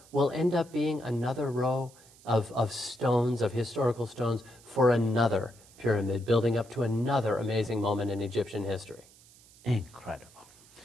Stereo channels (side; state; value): right; noise; hiss, 25 dB below the sound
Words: will end up being another row of stones, of historical stones, for another pyramid, building up to another amazing moment in Egyptian history. Incredible.